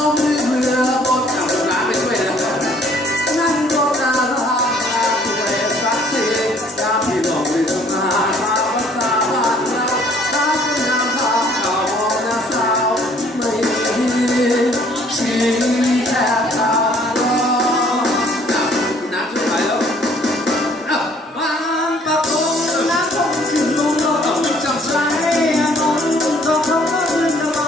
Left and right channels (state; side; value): normal; both; correlation 0.59